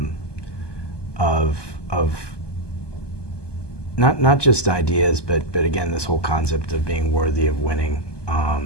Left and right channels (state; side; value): late; right; 1.2 ms